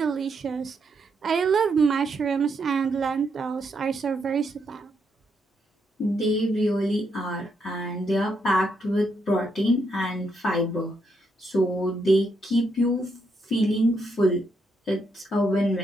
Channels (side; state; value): both; normal; correlation 0.78